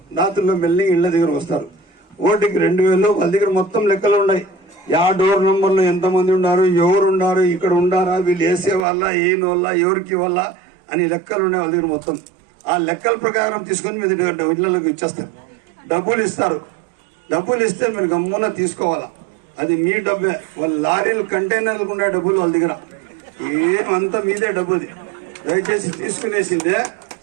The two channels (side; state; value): left; drops out; at 8.8 s